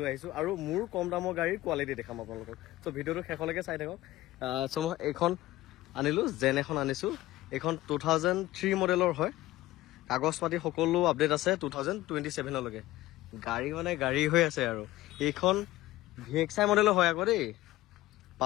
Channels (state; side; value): quieter; right; 16.9 dB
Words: আহিছোঁ আৰু মোৰ কম দামৰ গাড়ীৰ কোৱালিটি দেখাম আপোনালোকক চ' ভিডিঅ'টো শেষলৈকে চাই থাকক চ' মই এইখন আনিলোঁ জেন এখন আনিছোঁ এইখন 2003 মডেলৰ হয় কাগজ পাতি সকলো আপডেট আছে 2027লৈকে গাড়ী মানে গাড়ী হৈ আছে আৰু এইখন VXI মডেলৰ হয় আকৌ দেই